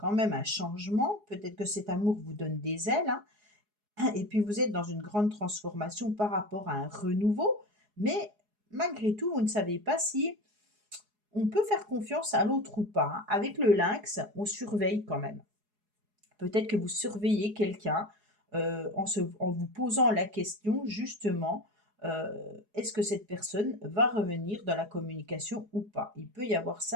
même un changement. Peut-être que cet amour vous donne des ailes, hein, et puis vous êtes dans une grande transformation par rapport à un renouveau. Mais malgré tout, vous ne savez pas si on peut faire confiance à l'autre ou pas, hein. Avec le lynx, on surveille quand même. Peut-être que vous surveillez quelqu'un, en vous posant la question justement, heu, est-ce que cette personne va revenir dans la communication ou pas? Il peut y avoir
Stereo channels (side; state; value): left; late; 4.8 ms